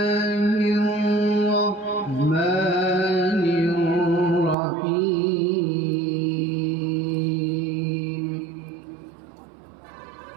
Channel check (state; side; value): drops out; left; at 4.5 s